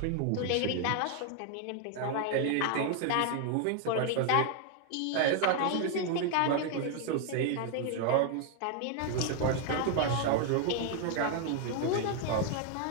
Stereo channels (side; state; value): both; different; correlation 0.00